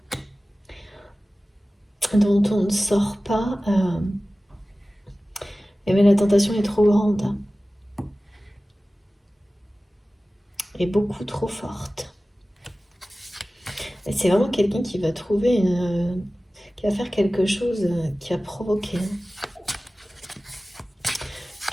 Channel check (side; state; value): both; normal; correlation 0.97